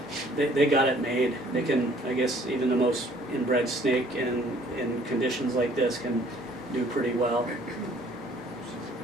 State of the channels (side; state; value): right; noise; hum, 27 dB below the sound